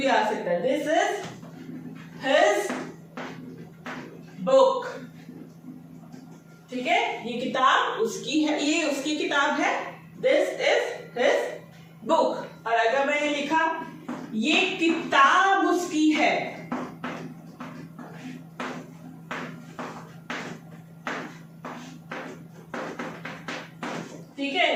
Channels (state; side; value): identical; both; correlation 1.00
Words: आ सकता है। This is his book. ठीक है, ये किताब उसकी है, ये उसकी किताब है। This is his book. और अगर मैंने लिखा ये किताब उसकी है, ठीक